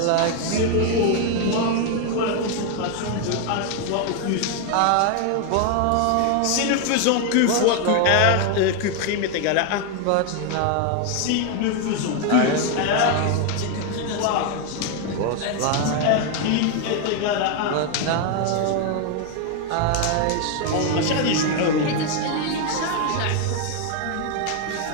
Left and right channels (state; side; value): different; both; correlation 0.01